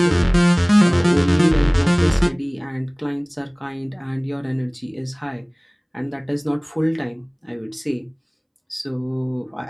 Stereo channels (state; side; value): identical; both; correlation 1.00